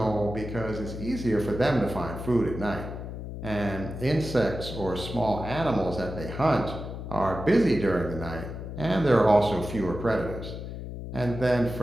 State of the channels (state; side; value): noise; left; hum, 8 dB below the sound